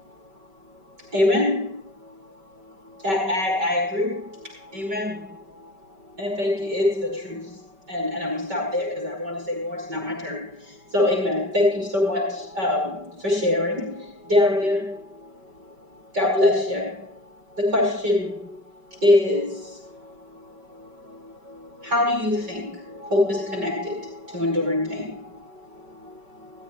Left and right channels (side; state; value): left; late; 5.2 ms